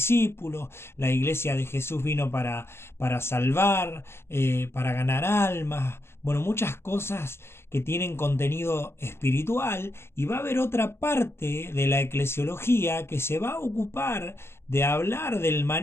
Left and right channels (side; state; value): right; late; 0.12 ms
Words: la iglesia de Jesús vino para salvar, para ganar almas, bueno, muchas cosas que tienen contenido espiritual, y va a haber otra parte de la eclesiología que se va a ocupar de hablar del